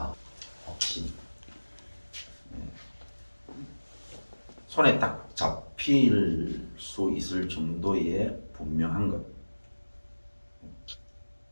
확신. 손에 딱 잡힐 수 있을 정도의 분명한 것.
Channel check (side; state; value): both; inverted; correlation -1.00